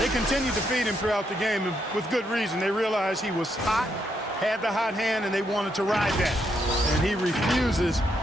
continued to feed him throughout the game, and with good reason. They realized he was hot, had the hot hand, and they wanted to ride that. And he refuses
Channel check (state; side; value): normal; both; correlation 0.78